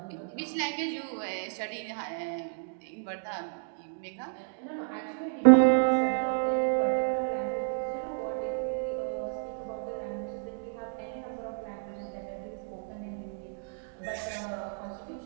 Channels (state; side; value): silent; left; digital silence